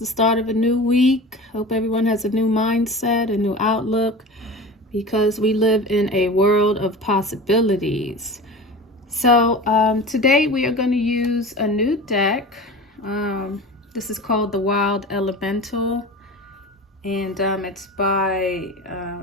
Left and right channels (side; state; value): both; normal; correlation 0.33